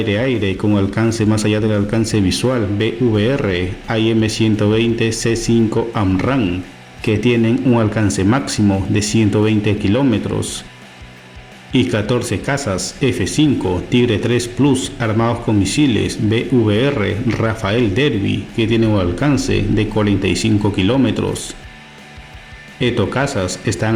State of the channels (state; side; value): identical; both; correlation 1.00